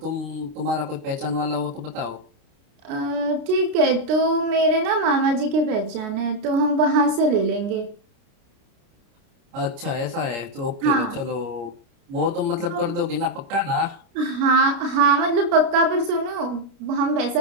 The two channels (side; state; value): left; late; 29 ms